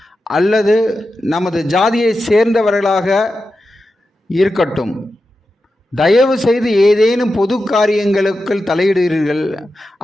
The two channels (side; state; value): both; normal; correlation 0.91